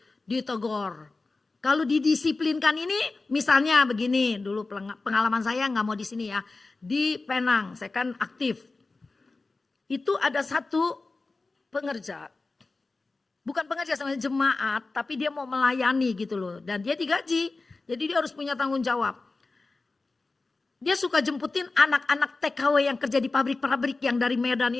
ditegur. Kalau didisiplinkan ini misalnya begini, dulu pengalaman saya nggak mau di sini ya, di Penang, saya kan aktif. Itu ada satu pengerja. Bukan pengerja sama jemaat, tapi dia mau melayani gitu loh. Dan dia digaji, jadi dia harus punya tanggung jawab. Dia suka jemputin anak-anak TKW yang kerja di pabrik-pabrik yang dari Medan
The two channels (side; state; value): right; quieter; 3.6 dB